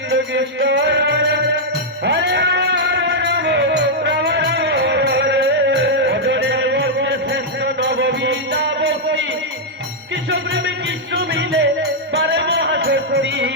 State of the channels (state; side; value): normal; both; correlation -0.05